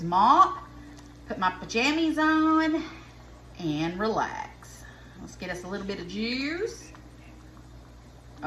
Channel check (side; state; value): both; identical; correlation 1.00